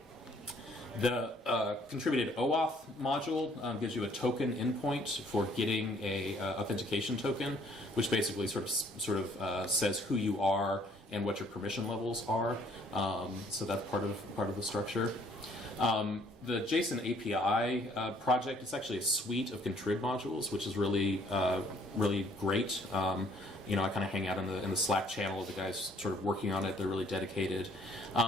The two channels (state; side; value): normal; both; correlation 0.62